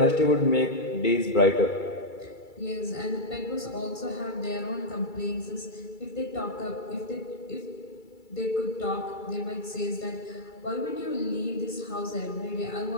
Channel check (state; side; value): late; right; 2.3 ms